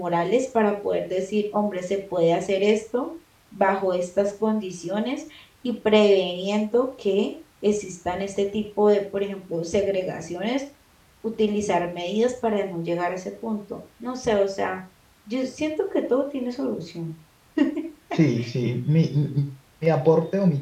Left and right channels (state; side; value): identical; both; correlation 1.00